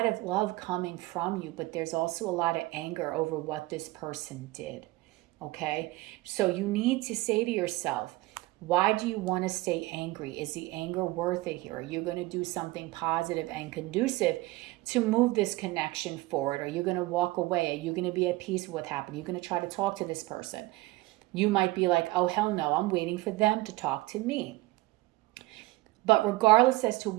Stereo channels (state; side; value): quieter; left; 19.8 dB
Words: of love coming from you, but there's also a lot of anger over what this person did. Okay? So you need to say to yourself, why do you want to stay angry? Is the anger worth it here? Are you going to do something positive and conducive to move this connection forward? Are you going to walk away? Are you going to be at peace with what happened? Are you going to try to talk to this person? You might be like, oh, hell no, I'm waiting for them to talk to me. But regardless as to